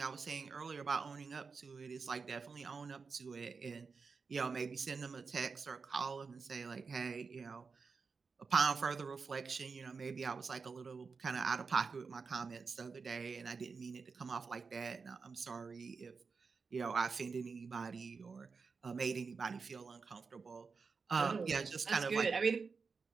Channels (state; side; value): quieter; left; 4.9 dB